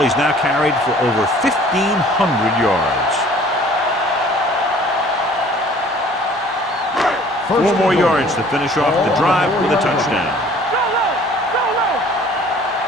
He's now carried for over 1,500 yards. 4 more yards to finish off the drive with a touchdown.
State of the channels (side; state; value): both; normal; correlation 0.52